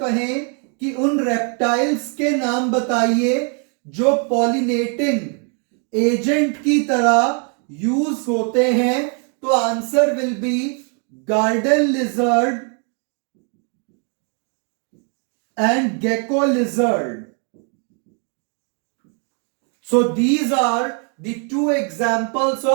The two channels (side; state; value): left; quieter; 39.7 dB